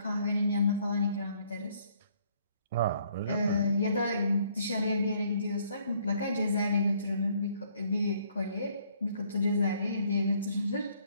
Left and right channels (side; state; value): both; inverted; correlation -0.65